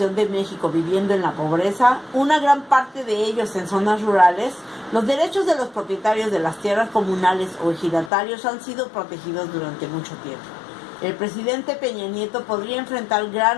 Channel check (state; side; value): drops out; right; at 8.1 s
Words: de México viviendo en la pobreza, una gran parte de ellos en zonas rurales. Los derechos de los propietarios de las tierras comunales o ejidatarios han sido protegidos durante mucho tiempo. El presidente Peña Nieto podría enfrentar